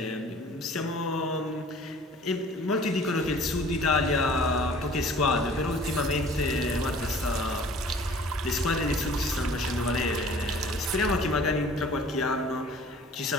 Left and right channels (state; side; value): normal; both; correlation 0.49